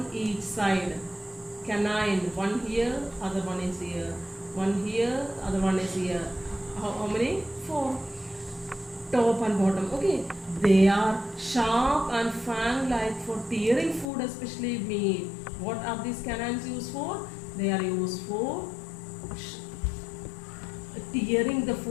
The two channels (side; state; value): right; drops out; at 14.1 s